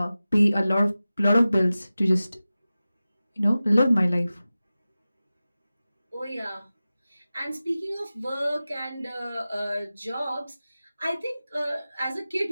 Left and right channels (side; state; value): both; inverted; correlation -0.96